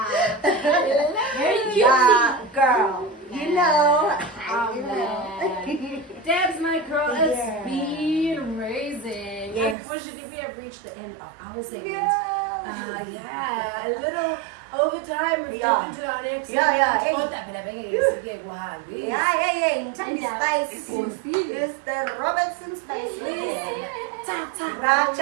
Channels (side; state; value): left; drops out; at 9.8 s